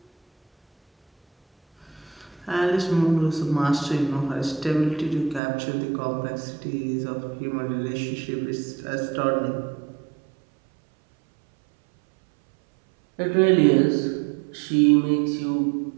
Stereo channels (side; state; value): left; drops out; at 5.4 s